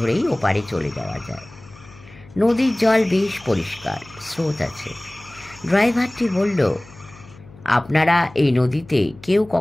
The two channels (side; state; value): left; noise; hum, 22 dB below the sound